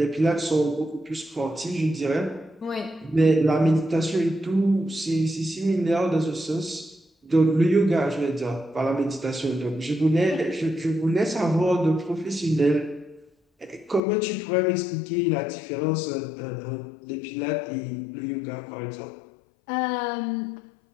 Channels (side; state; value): right; drops out; at 14.0 s